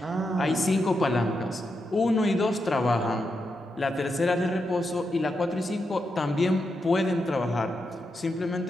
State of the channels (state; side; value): normal; both; correlation 0.85